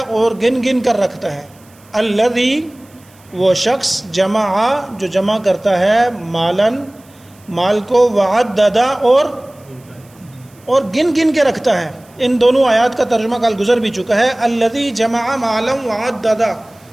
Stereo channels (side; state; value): right; noise; hiss, 29 dB below the sound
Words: گن گن کر رکھتا ہے۔ الذی، وہ شخص، جمع، جو جمع کرتا ہے، مالن، مال کو، وعددا، اور گن گن کے رکھتا ہے۔ ان دونوں آیات کا ترجمہ کل گزر بھی چکا ہے۔ الذی جمع مالا وعددا،